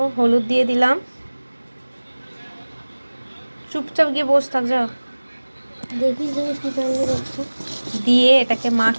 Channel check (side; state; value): both; inverted; correlation -1.00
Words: হলুদ দিয়ে দিলাম। চুপচাপ গিয়ে বসে থাক, যাও। দিয়ে এটাকে